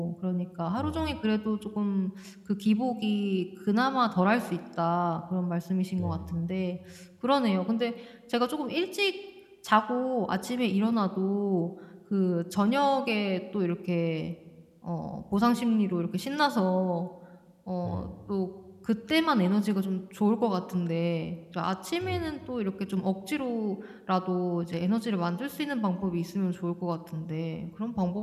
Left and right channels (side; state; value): both; identical; correlation 1.00